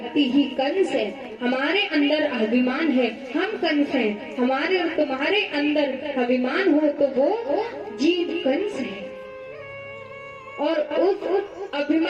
ही कंस है। हमारे अंदर अभिमान है, हम कंस हैं। हमारे और तुम्हारे अंदर अभिमान हो तो वो जीव कंस है। और उस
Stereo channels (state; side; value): identical; both; correlation 1.00